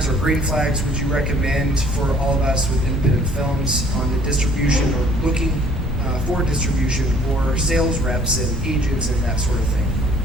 or green flags would you recommend for all of us with independent films on the distribution or looking for distribution or sales reps and agents and that sort of thing?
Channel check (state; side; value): normal; both; correlation 0.57